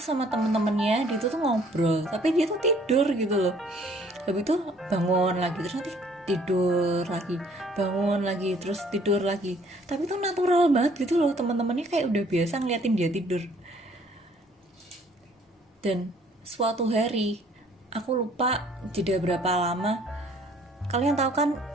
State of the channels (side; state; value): both; normal; correlation 0.59